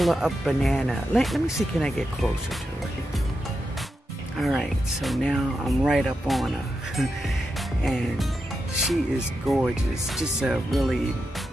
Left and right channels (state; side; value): normal; both; correlation 0.87